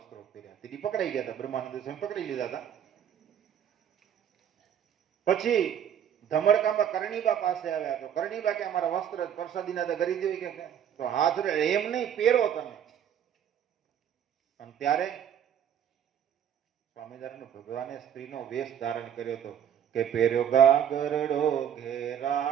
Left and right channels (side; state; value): left; quieter; 9.3 dB